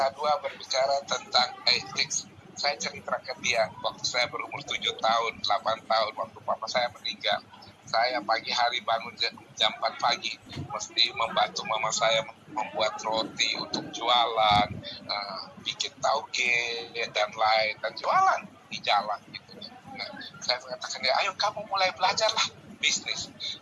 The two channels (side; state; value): both; identical; correlation 1.00